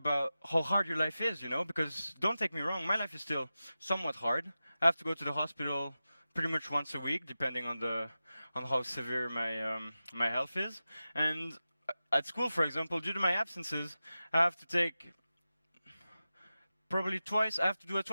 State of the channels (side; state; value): both; inverted; correlation -0.94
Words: how hard your life is, you know, because don't take me wrong, my life is still somewhat hard. I have to go to the hospital pretty much once a week, depending on how severe my health is. And at school, for example, due to my absences, I have to take probably I have to do